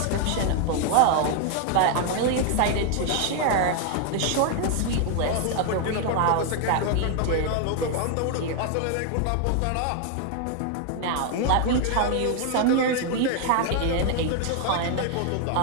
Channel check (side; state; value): both; different; correlation 0.00